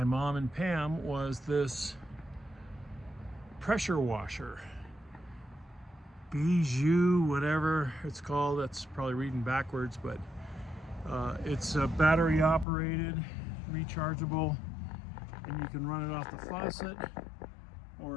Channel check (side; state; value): right; drops out; at 12.7 s